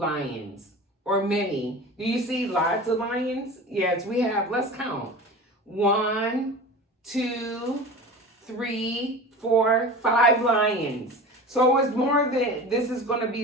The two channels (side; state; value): both; normal; correlation 0.34